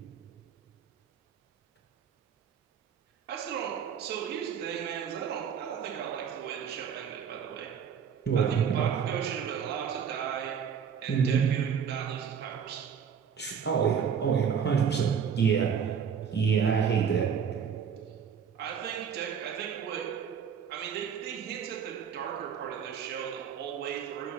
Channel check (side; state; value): left; quieter; 7.4 dB